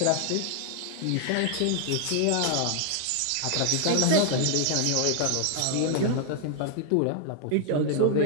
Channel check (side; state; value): both; different; correlation 0.00